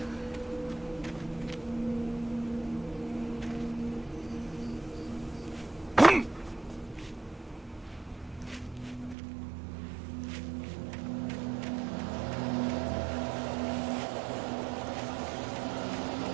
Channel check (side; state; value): left; drops out; at 9.2 s